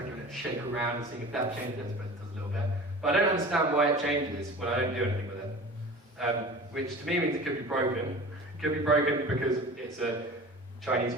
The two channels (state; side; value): normal; both; correlation 0.38